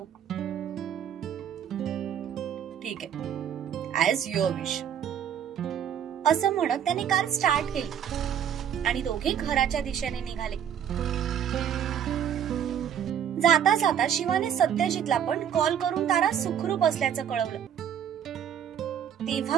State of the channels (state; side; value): quieter; left; 9.1 dB